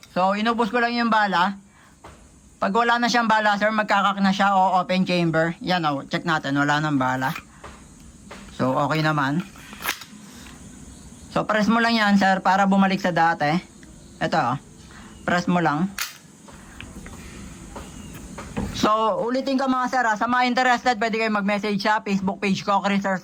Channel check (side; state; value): both; identical; correlation 1.00